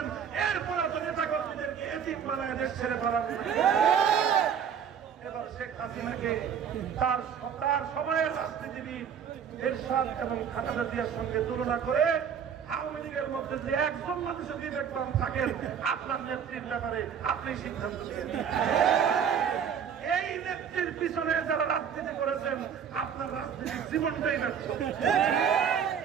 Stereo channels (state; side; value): quieter; left; 7.7 dB